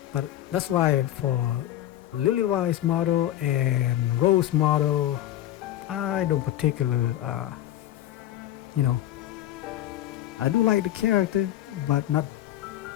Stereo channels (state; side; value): quieter; right; 13.1 dB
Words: But that's why for Lilywise model and Rose model, I don't particular, I do like the character, but not